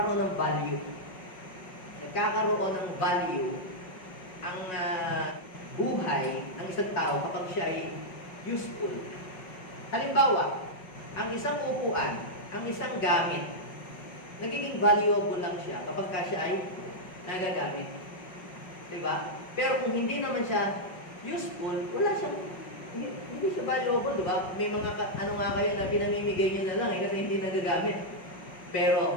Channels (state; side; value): late; right; 5.4 ms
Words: ng value. Nagkakaroon ng value ang buhay ng isang tao kapag siya ay useful. Halimbawa, ang isang upuan, ang isang gamit, nagiging valuable lang siya kapag siya ay nagagamit. Diba? Pero kung hindi naman siya useful, wala siyang, hindi siya valuable, diba? May mga, kayo na pinamimigay nyo na lang kasi hindi nagagamit.